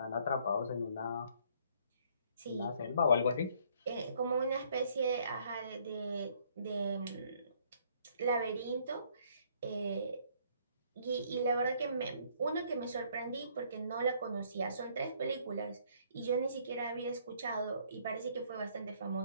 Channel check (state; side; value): inverted; both; correlation -0.64